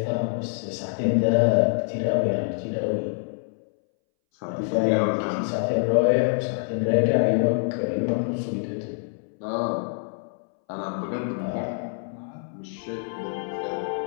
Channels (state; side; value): silent; right; 61 dB below the other